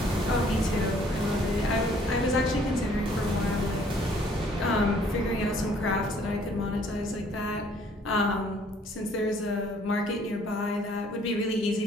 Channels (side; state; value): both; normal; correlation 0.60